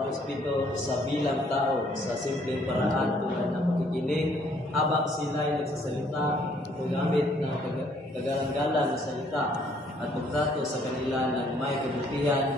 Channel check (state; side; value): normal; both; correlation 0.64